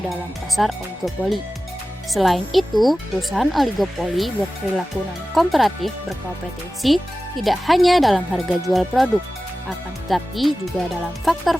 dalam pasar oligopoli. Selain itu, perusahaan oligopoli berperilaku non-komparatif berkompetensi tidak hanya dalam harga jual produk, akan tetapi juga dalam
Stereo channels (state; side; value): normal; both; correlation 0.96